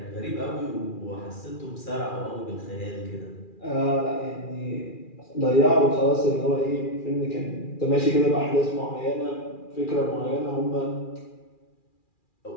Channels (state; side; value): late; right; 2.4 ms